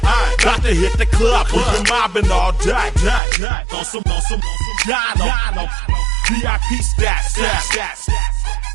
Got to hit the club, we've been mobbing all day. On some Dino, VIP stats.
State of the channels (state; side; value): drops out; left; at 3.2 s